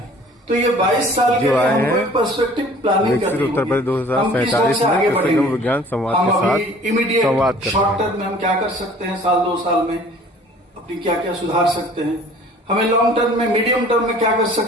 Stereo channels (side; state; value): both; normal; correlation 0.50